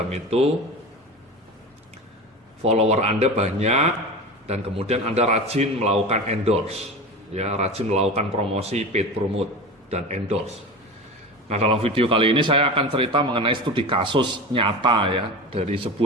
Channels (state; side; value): normal; both; correlation 0.29